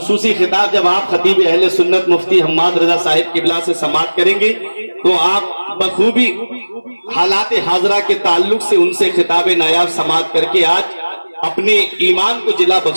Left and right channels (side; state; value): both; inverted; correlation -1.00